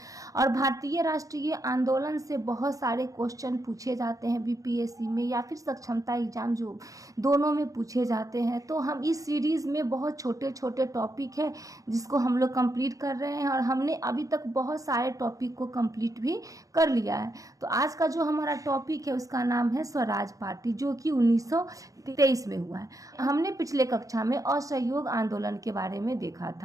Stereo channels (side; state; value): left; late; 0.16 ms